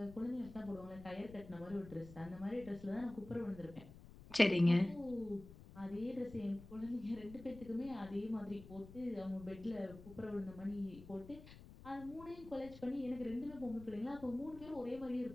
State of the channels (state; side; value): noise; left; rumble, 17 dB below the sound